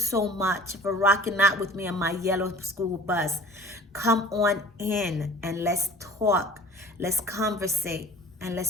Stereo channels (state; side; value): normal; both; correlation 0.46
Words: much for rocking out with me on my yellow school bus. Come on in and let's talk. Let's conversate. and